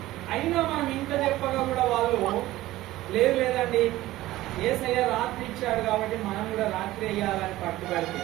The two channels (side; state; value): left; quieter; 16.4 dB